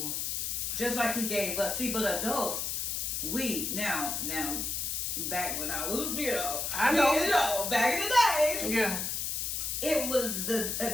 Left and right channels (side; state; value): left; noise; hiss, 1 dB below the sound